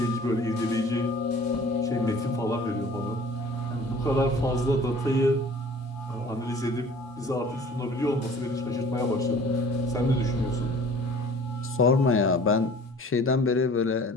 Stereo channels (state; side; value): normal; both; correlation 0.48